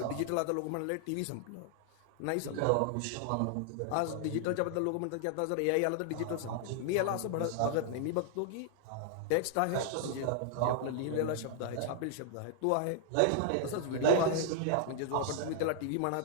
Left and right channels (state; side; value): different; both; correlation 0.00